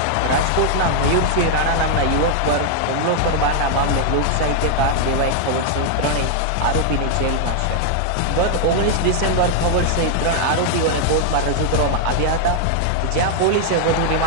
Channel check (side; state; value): both; different; correlation 0.00